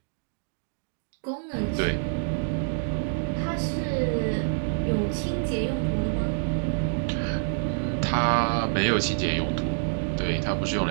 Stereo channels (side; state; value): left; silent; digital silence